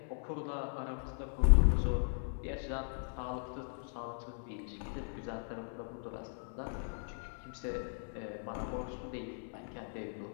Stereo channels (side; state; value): right; silent; 53 dB below the other